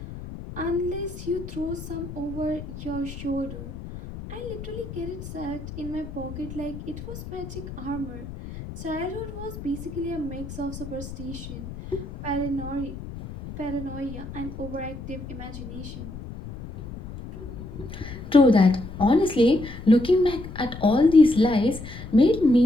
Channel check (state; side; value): noise; left; rumble, 11 dB below the sound